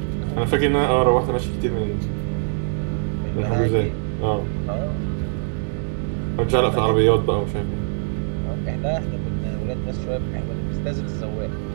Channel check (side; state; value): left; silent; digital silence